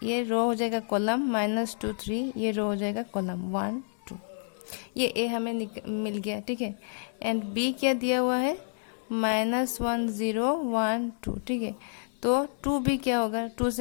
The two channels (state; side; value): silent; right; 58 dB below the other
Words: ये रो हो जाएगा कॉलम -2 3, ये रो हो जाएगा कॉलम 1 2। ये ए हमें मिल गया। ठीक है, एंड बी क्या दिया हुआ है, -1 0 1 2। ठीक है, तो 2b क्या होगा, 2